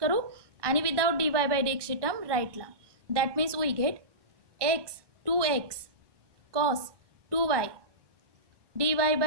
करू आणि विदाउट dy बाय dx ची टर्म राईटला. That means we get x 2x cos 2y dy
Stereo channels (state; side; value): late; left; 1.2 ms